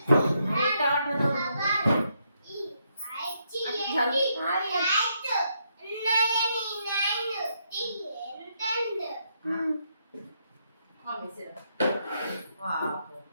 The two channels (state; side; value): inverted; both; correlation -0.77